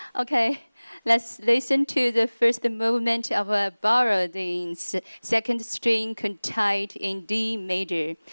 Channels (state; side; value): inverted; both; correlation -1.00